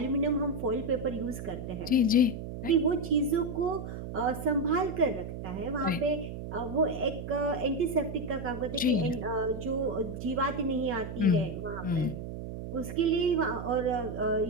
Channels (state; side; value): noise; right; hum, 8 dB below the sound